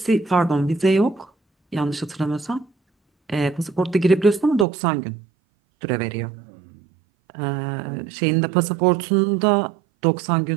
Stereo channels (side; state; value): left; drops out; at 4.7 s